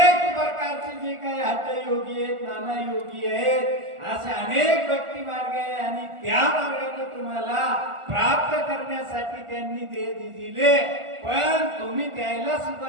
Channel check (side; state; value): left; late; 1.4 ms